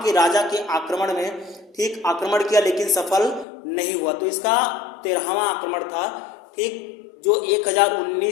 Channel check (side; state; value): right; drops out; at 3.5 s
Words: के राजा के आक्रमण में ठीक आक्रमण किया लेकिन सफल नहीं हुआ, तो इसका 13वां आक्रमण था। ठीक, जो